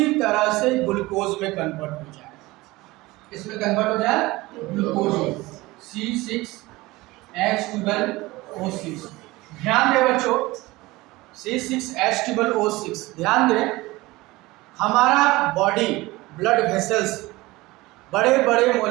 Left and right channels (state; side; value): quieter; left; 20.4 dB